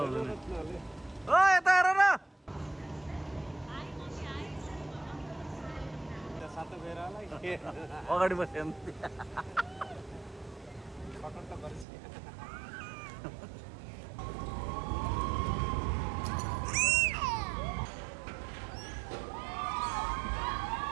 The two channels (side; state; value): left; drops out; at 11.9 s